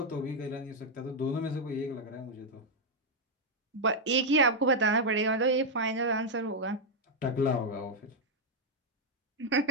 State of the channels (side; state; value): both; normal; correlation -0.01